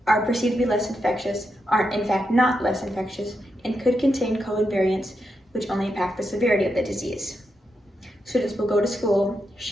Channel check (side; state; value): both; normal; correlation 0.84